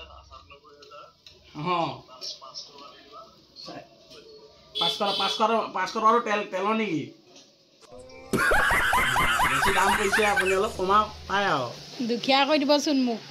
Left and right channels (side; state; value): both; identical; correlation 1.00